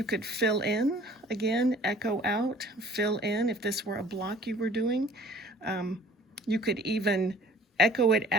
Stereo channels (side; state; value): both; normal; correlation 0.51